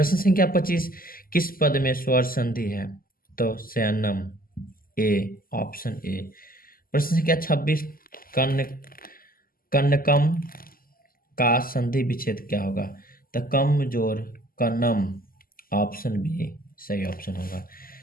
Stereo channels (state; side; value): late; right; 0.42 ms